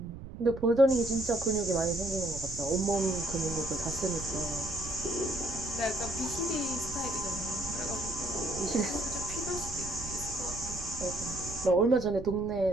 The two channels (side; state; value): right; noise; rumble, 12 dB below the sound